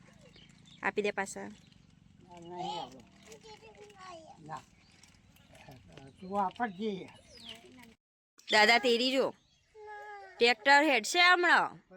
આપી દે પાછા દાદા તેરી જો ટ્રેક્ટર હેડશે હમણાં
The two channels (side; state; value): both; identical; correlation 1.00